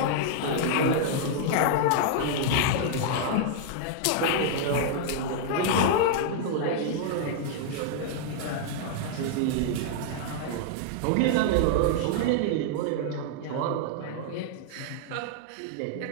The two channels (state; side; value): different; both; correlation -0.01